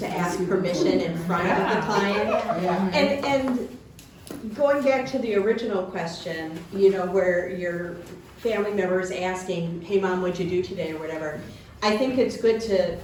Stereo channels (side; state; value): both; identical; correlation 1.00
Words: ask permission in front of the client. And going back to the original question, you know, where your family member is asking, hey mom, what'd you do today or whatever, I think it's good to